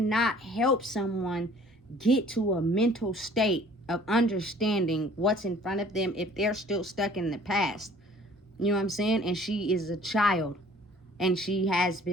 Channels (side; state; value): both; normal; correlation 0.53